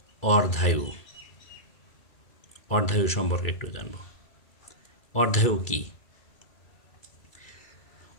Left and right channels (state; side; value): late; right; 2.3 ms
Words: অর্ধায়ু। অর্ধায়ু সম্পর্কে একটু জানব। অর্ধায়ু কী?